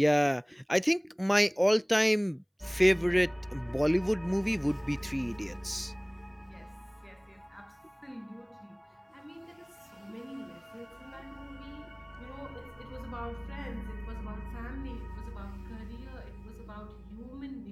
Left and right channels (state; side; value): identical; both; correlation 1.00